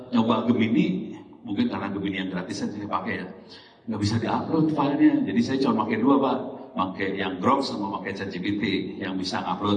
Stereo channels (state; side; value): identical; both; correlation 1.00